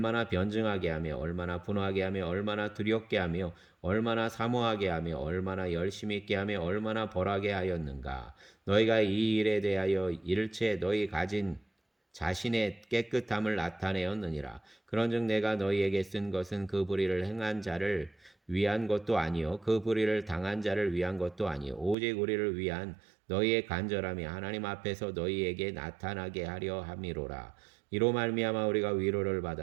변증하게 하며 얼마나 분하게 하며 얼마나 두렵게 하며 얼마나 사모하게 하며 얼마나 열심히 있게 하며 얼마나 벌하게 하였는가. 너희가 이 일에 대하여 일체 너희 가진 자신의 깨끗함을 나타내었느니라. 그런즉 내가 너희에게 쓴 것은 그 불의를 행한 자를 위한 것도 아니요 그 불의를 당한 자를 위한 것도 아니요 오직 우리를 위한 너희의 간절함이 하나님 앞에서 너희에게 나타나게 하려 함이로라. 이로 말미암아 우리가 위로를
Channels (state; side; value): drops out; left; at 22.0 s